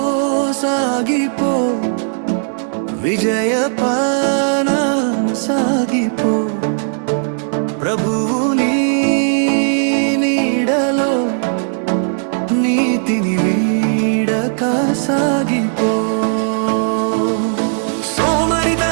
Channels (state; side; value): silent; left; digital silence